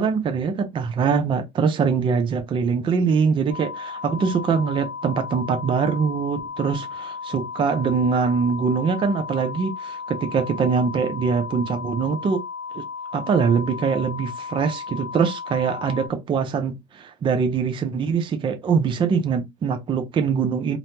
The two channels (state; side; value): quieter; left; 5.0 dB